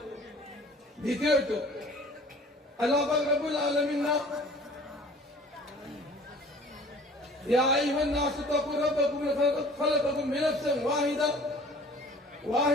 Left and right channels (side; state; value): both; normal; correlation 0.49